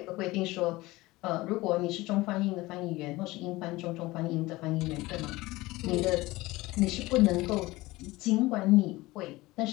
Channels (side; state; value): right; quieter; 20.0 dB